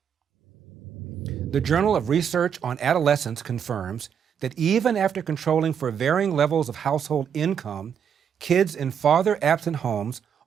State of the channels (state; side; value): quieter; left; 7.9 dB